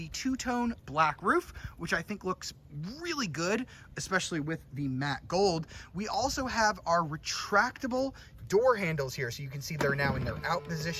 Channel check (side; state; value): both; identical; correlation 1.00